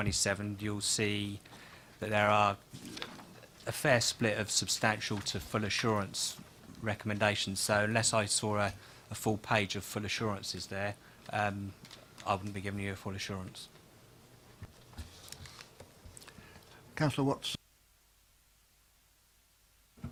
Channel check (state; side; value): identical; both; correlation 1.00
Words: you'll see that there are a fair split of substantial to full assurance recommendations. So unless I saw a full page of full assurances there, I wouldn't be giving you a full assurance. Councillor Watts.